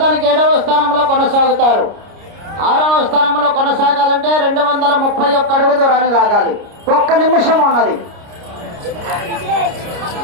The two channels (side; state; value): left; late; 29 ms